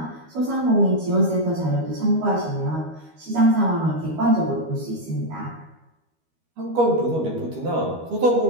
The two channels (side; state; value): left; late; 13 ms